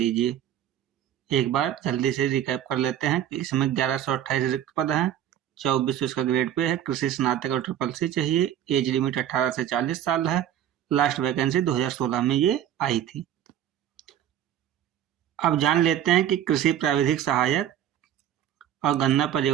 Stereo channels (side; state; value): left; quieter; 10.9 dB